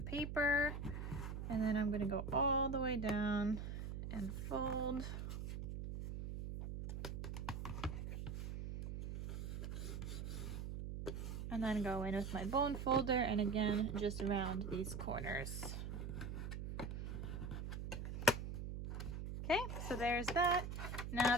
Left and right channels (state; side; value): noise; right; hum, 5 dB below the sound